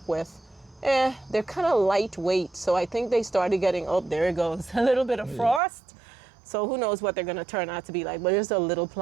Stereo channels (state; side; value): drops out; left; at 5.6 s